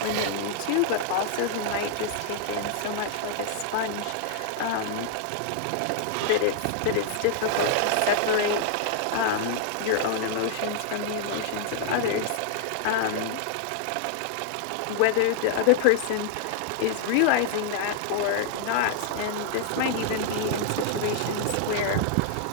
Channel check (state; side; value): different; both; correlation -0.01